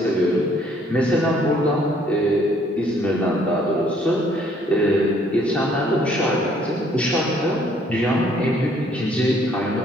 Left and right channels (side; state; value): both; normal; correlation 0.63